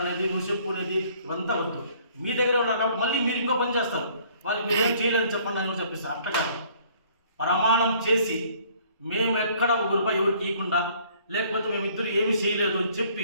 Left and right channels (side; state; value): both; inverted; correlation -0.58